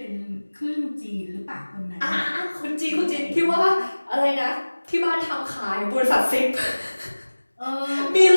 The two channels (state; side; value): inverted; both; correlation -1.00